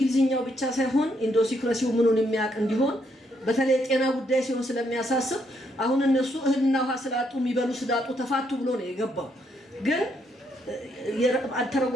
ብቻ ሳይሆን ኢንዶሲክራሲው ምኑን የሚያቅ እንዲሆን በተለይ ጤና ጉዳይ ሲሆን ስለሚያሳስብ አሁን እነሱ እህልና ውሃ ስላጡ የሚበሉ ስዳጡ ተፋቱ ብሎ ነው የገባው። ግን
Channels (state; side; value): normal; both; correlation 0.74